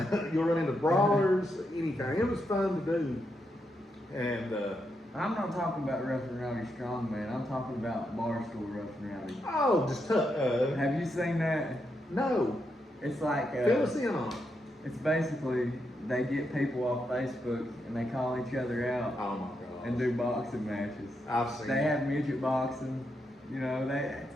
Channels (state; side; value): normal; both; correlation 0.82